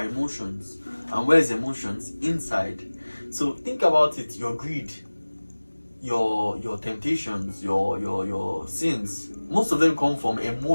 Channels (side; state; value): both; inverted; correlation -1.00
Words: emotions, and where's emotions? Inside. So think about it, your greed, your temptations, your sins, most of them come from